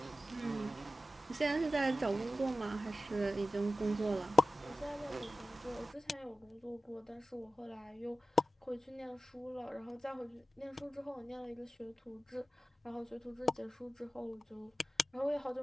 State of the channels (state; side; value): normal; both; correlation 0.94